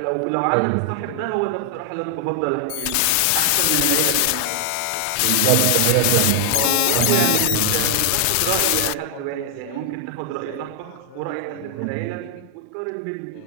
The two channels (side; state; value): both; different; correlation 0.00